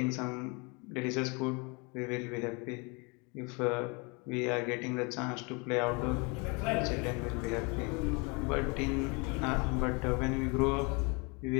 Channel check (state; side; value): quieter; right; 30.7 dB